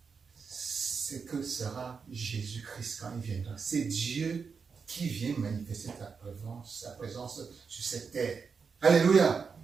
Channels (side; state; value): left; quieter; 5.6 dB